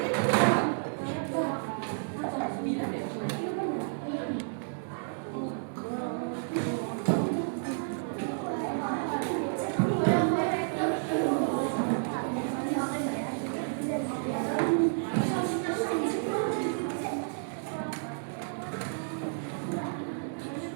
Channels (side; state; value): left; silent; digital silence